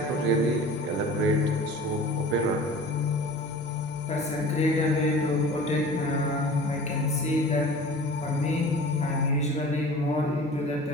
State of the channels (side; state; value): both; normal; correlation 0.40